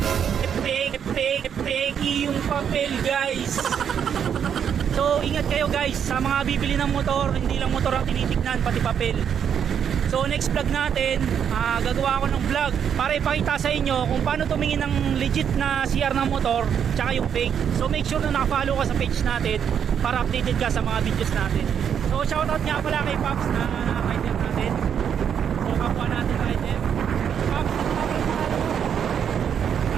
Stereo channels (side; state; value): left; quieter; 8.2 dB